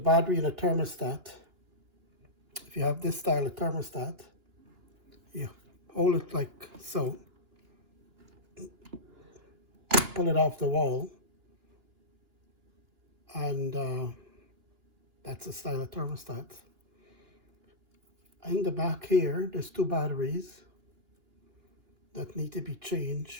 in a thermostat, if you have this style of thermostat, you hold it like so, pull it off the wall, and that's the style of thermostat. In the back here, there's two batteries that need to be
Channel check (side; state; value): left; late; 2.9 ms